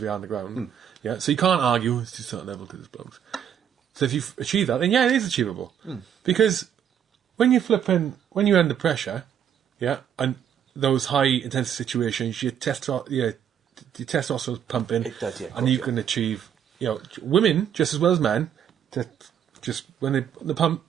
we are on the ground. Yeah, so you can't argue it's just a certain level because it's blokes. So if you achieve that, then yeah, it is achievable. Because when you're under pressure, yeah, and those high intensity situations, your testosterone's pumping, it does, yeah, and you can achieve, women just as well as men. When they pump,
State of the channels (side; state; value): left; quieter; 9.0 dB